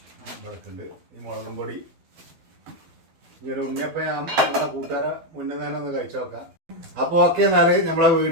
ഇവിടക്കുണ്ട്. ഈ മുളകും പൊടി. ഇങ്ങനെ ഉണ്ണിയപ്പം നമ്മളെ കൂട്ടുകാരെ മുന്നേ തന്നെ ഒന്ന് കഴിച്ചു നോക്കാം. അപ്പൊ ഓക്കെ, എന്നാല് നമ്മളെ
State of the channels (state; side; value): late; left; 12 ms